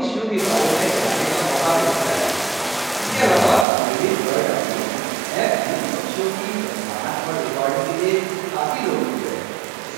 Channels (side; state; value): left; drops out; at 3.7 s